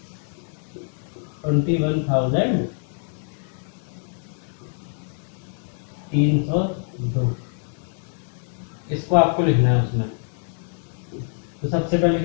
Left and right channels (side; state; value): right; silent; digital silence